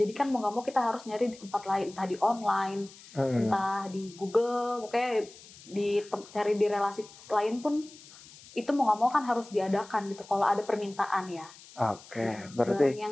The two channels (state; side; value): noise; left; hiss, 20 dB below the sound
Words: kan mau nggak mau kita harus nyari di tempat lain, entah di online, entah di Google, pokoknya cari di relasi lain pun itu mau nggak mau kan harus diadakan gitu kalau ada permintaan ya. Oke, berarti barang